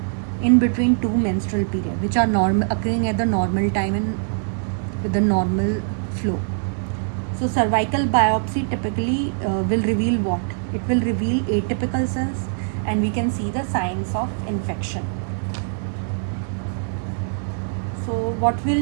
in between two menstrual periods, which are occurring at the normal time and with the normal flow. So cervical biopsy typically will reveal what? It will reveal atypical cells, and we can see the signs of infection. So what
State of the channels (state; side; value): silent; left; 64 dB below the other